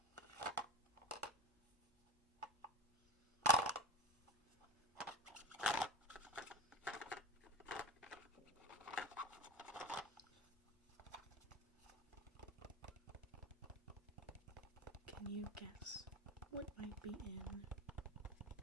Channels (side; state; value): both; normal; correlation 0.27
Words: Can you guess what might be in